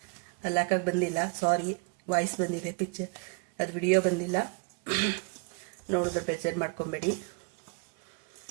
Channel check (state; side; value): quieter; left; 36.1 dB